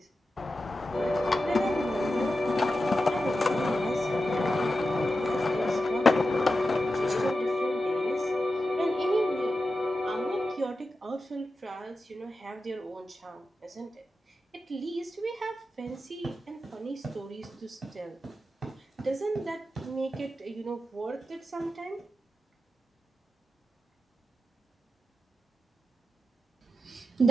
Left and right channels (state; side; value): normal; both; correlation 0.91